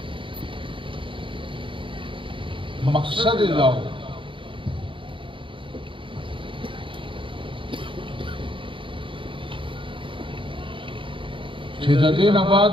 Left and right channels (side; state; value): left; late; 0.25 ms